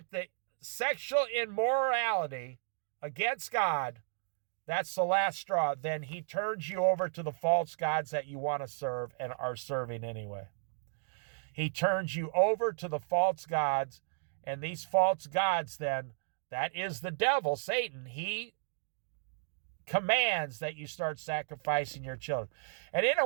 the sexual immorality against God, that's the last straw. Then he turns you over to the false gods that you want to serve and are serving anyway. He turns you over to the false gods, and these false gods then, that is the devil, Satan. He commands that you start sacrificing your children. And in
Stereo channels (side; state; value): left; silent; digital silence